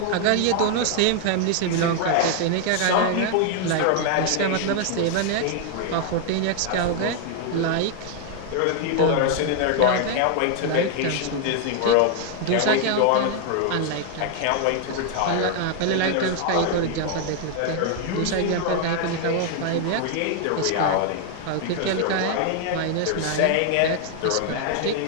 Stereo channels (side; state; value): both; different; correlation 0.00